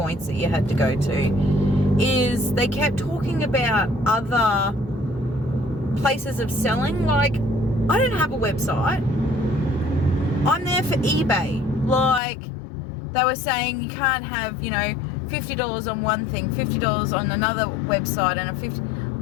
that you had to go to, is they kept talking about other places of selling. Like, I don't have a website. I'm there for eBay. Like, they were saying you can't have, you know, $50 on one thing, $50 on another website, and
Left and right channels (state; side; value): drops out; right; at 12.2 s